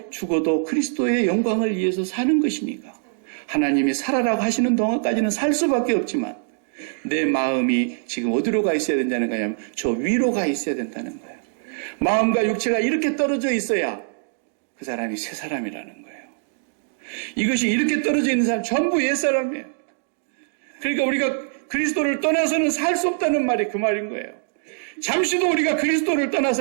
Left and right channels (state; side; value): silent; left; digital silence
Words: 죽어도 그리스도의 영광을 위해서 사는 것이니까 하나님이 살아라고 하시는 동안까지는 살 수밖에 없지만 내 마음이 지금 어디로 가 있어야 된다는 거냐면 저 위로 가 있어야 된다는 거예요. 마음과 육체가 이렇게 떨어져 있어야 그 사람이 새 사람이라는 거예요. 이것이 이렇게 떨어져 있는 사람 전부 옛사람이에요. 그러니까 우리가 그리스도를 떠나서는 살 수 없다는 말이 그 말인 거예요. 잠시도 우리가 그리스도를